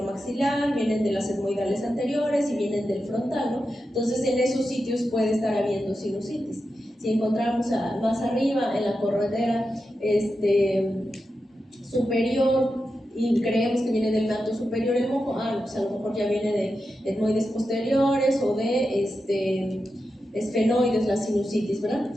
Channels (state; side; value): normal; both; correlation 0.89